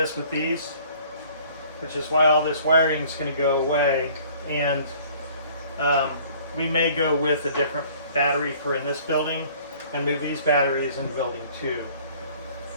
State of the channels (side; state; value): both; inverted; correlation -0.53